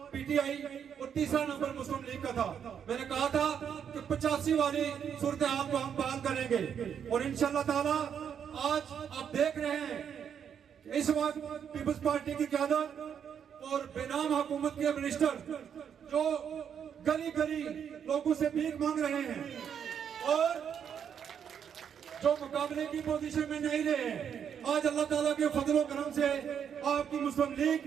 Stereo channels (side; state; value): left; quieter; 8.1 dB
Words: पीटीआई और तीसरा नंबर मुस्लिम लीग का था, मैंने कहा था कि 85 वाली सूरत हाल को हम बहाल करेंगे। और इंशाअल्लाह ताला आज आप देख रहे हैं कि इस वक्त पीपल्स पार्टी की क़यादत और बेनाम हुकूमत के मिनिस्टर जो गली गली लोगों से भीख मांग रहे हैं और जो मुकाबले की पोजीशन में नहीं रहे, आज अल्लाह ताला के फजल व करम से आपकी मुस्लिम लीग